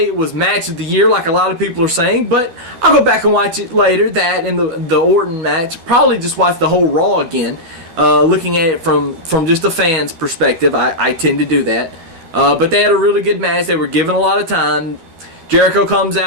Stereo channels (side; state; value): left; late; 12 ms